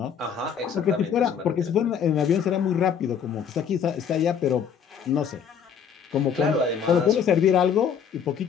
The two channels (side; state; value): right; quieter; 7.5 dB